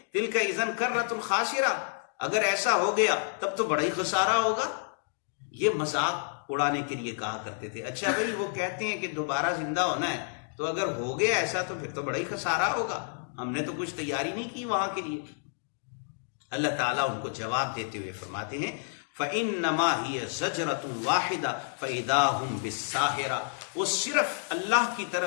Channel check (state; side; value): silent; right; digital silence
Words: تلک اذا کرۃ خاسرہ، اگر ایسا ہو گیا تب تو بڑا ہی خسارہ ہوگا۔ یہ مذاق اڑانے کے لیے کہا کرتے تھے۔ اچھا بھائی، وہ کہتے ہیں کہ دوبارہ زندہ ہونا ہے، تو اگر ہو گیا ایسا تو پھر تو بڑا ہی خسارہ ہوگا، ہم نے تو کچھ تیاری نہیں کی وہاں کے لیے۔ اللہ تعالیٰ ان کو جواب دیتے ہوئے فرماتے ہیں فَإِنَّمَا هِيَ زَجْرَةٌ وَاحِدَةٌ فَإِذَا هُمْ بِالسَّاهِرَةِ، وہ صرف اللہ کی